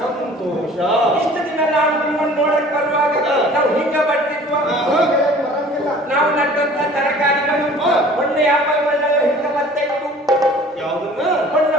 ಇಷ್ಟು ದಿನ ನಾವು ನಿಮ್ಮನ್ನು ನೋಡಕ್ ಬರುವಾಗ ನಾವು ಹಿಂಗ ಬರ್ತಿದ್ವ. ನಾವು ನಟ್ಟಂತ ತರಕಾರಿಗಳು, ಹಣ್ಣು ಹಂಪಲುಗಳೆಲ್ಲ ಹಿಂಗ ಬರ್ತಾ ಇತ್ತು. ಯಾವುದನ್ನ?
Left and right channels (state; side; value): normal; both; correlation 0.48